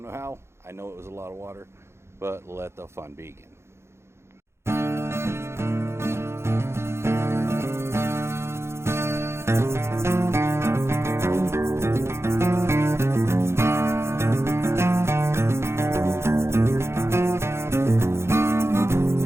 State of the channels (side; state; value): left; late; 0.13 ms